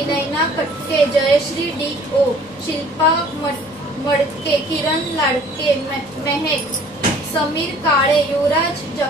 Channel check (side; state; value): both; normal; correlation 0.53